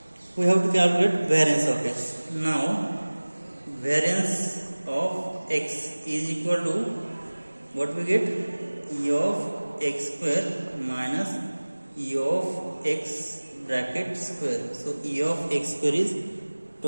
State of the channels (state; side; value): inverted; both; correlation -1.00